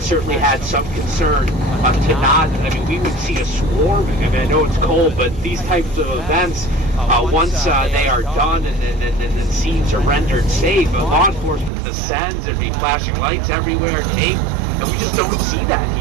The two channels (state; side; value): drops out; left; at 11.7 s